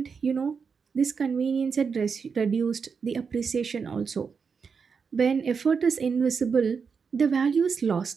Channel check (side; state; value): left; quieter; 5.7 dB